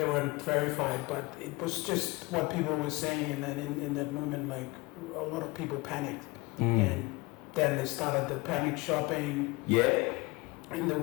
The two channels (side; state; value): right; quieter; 23.7 dB